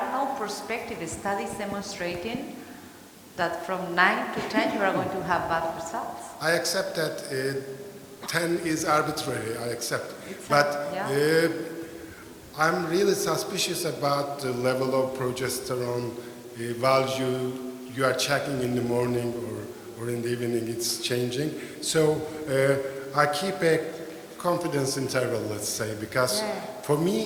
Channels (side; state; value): both; identical; correlation 1.00